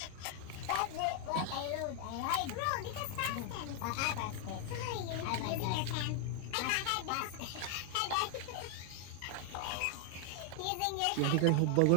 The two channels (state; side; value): different; both; correlation 0.00